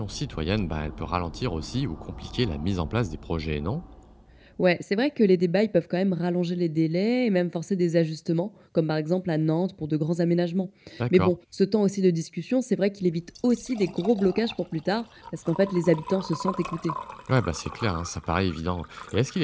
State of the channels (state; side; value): identical; both; correlation 1.00